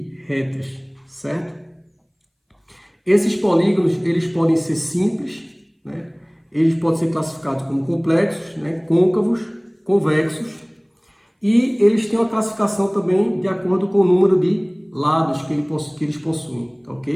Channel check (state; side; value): identical; both; correlation 1.00